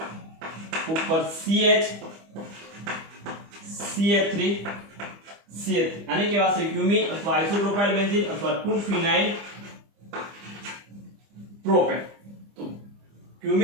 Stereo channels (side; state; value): left; late; 25 ms